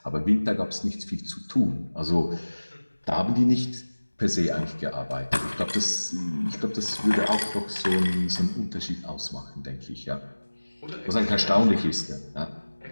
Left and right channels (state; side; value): inverted; both; correlation -1.00